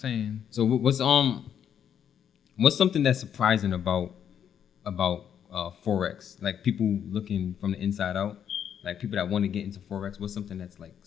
So what's something that's surprising about Forex? Like people looking from the inside out, like people that want to get into Forex. What's something that's like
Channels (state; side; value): quieter; right; 8.8 dB